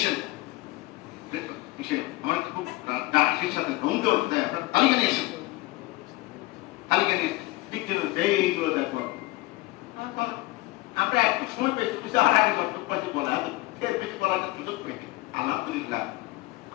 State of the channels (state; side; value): quieter; right; 20.3 dB